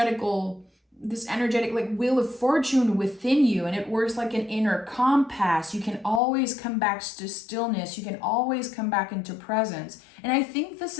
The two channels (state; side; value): drops out; right; at 6.2 s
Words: like wheel of fortune within you, and it works like an inner compass. You can always come back to stillness. You can always come back into presence. And I think this